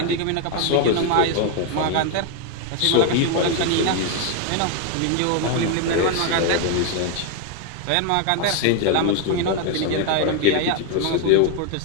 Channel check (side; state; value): both; different; correlation 0.01